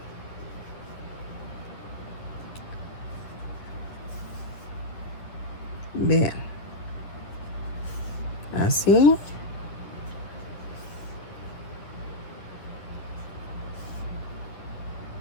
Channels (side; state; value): right; late; 9.8 ms